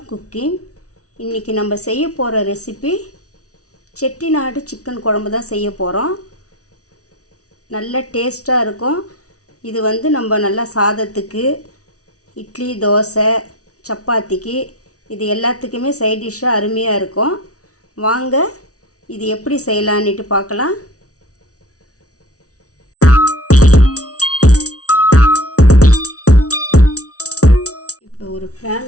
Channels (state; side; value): late; right; 0.67 ms